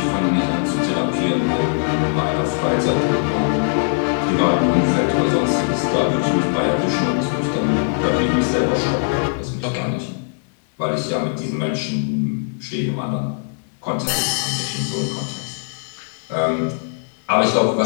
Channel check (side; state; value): right; silent; 66 dB below the other